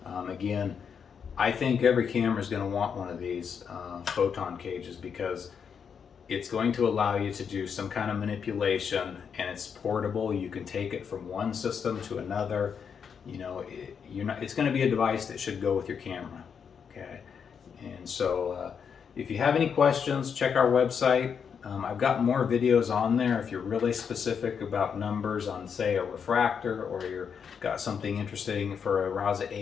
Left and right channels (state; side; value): quieter; right; 6.9 dB